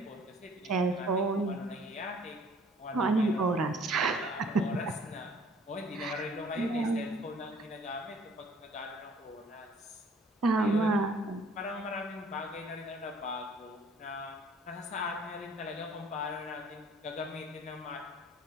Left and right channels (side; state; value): both; normal; correlation 0.55